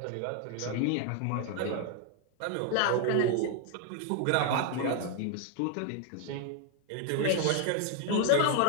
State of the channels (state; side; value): different; both; correlation 0.00